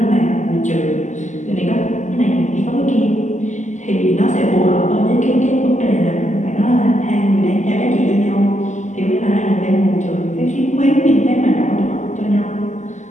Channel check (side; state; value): right; late; 0.34 ms